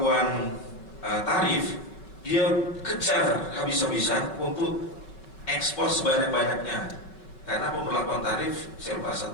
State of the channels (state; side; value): late; right; 5.2 ms